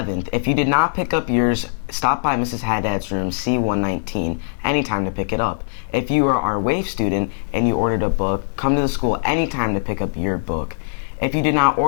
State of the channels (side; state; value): right; silent; digital silence